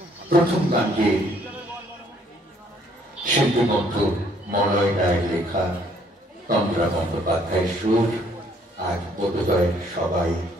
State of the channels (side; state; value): both; normal; correlation 0.64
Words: প্রথম গানটি শিল্পী বন্ধু মলয় রায়ের লেখা, তন্দ্রা বন্দ্যোপাধ্যায়ের সুর। আজ বোধোদয়ের সবাই